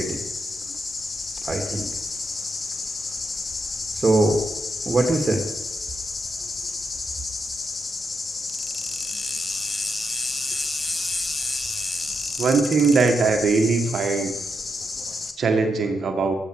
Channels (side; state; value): both; normal; correlation 0.84